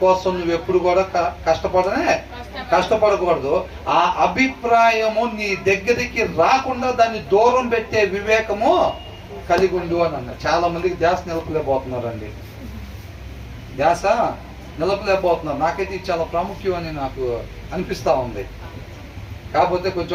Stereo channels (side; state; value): both; identical; correlation 1.00